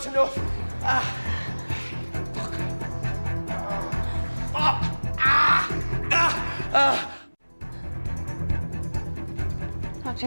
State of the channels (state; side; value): inverted; both; correlation -1.00